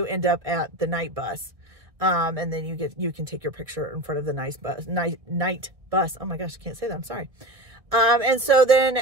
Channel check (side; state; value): left; late; 1.6 ms